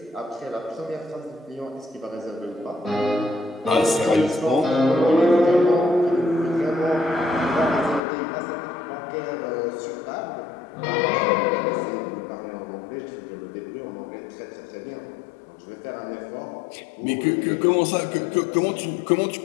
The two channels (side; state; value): right; drops out; at 8.0 s